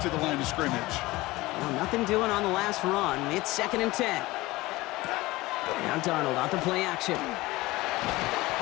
to the line of scrimmage. Well, nothing doing on the last run. It's second and 10. Now Darnold out the play action.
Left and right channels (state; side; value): quieter; right; 19.8 dB